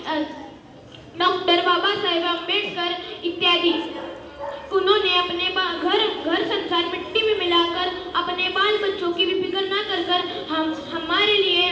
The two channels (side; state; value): both; identical; correlation 1.00